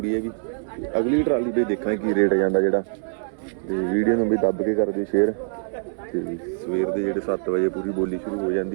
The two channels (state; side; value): silent; left; 63 dB below the other